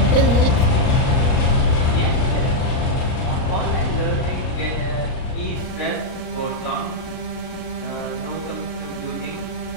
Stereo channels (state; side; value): late; right; 38 ms